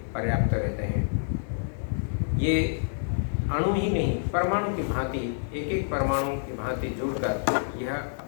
पर्याप्त रहते हैं। ये अणु ही नहीं, परमाणु की भांति, एक एक परमाणु की भांति जुड़कर यह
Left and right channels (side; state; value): right; silent; digital silence